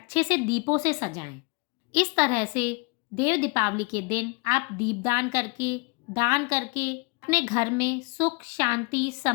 से दीपों से सजाएं। इस तरह से देव दीपावली के दिन आप दीपदान करके, दान करके अपने घर में सुख, शांति,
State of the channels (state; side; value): quieter; right; 30.6 dB